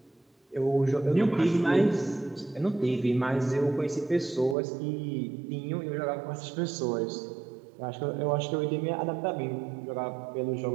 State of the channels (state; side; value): drops out; left; at 4.5 s